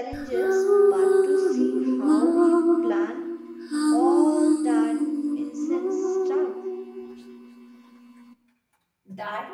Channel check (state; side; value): identical; both; correlation 1.00